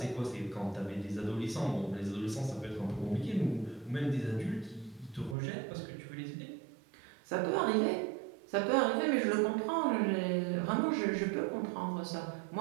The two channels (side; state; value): left; drops out; at 5.4 s